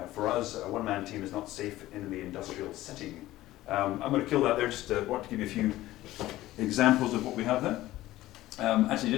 For us, a 1-man team is not safe in the industrial setting. I'm going to kill that there, just want to give you a few examples of what we have there. Actually,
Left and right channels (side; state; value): right; quieter; 16.0 dB